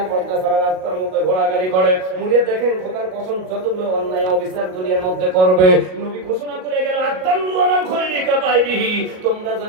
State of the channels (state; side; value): late; left; 38 ms